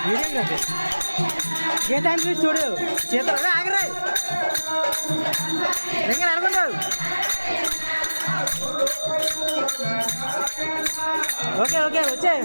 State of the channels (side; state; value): both; inverted; correlation -1.00